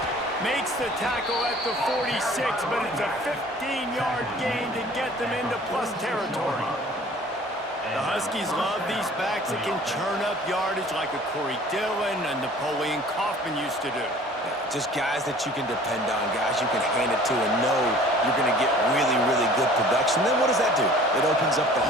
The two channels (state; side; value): normal; both; correlation 0.49